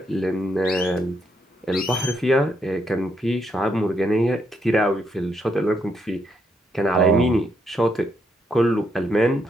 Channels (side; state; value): both; normal; correlation 0.76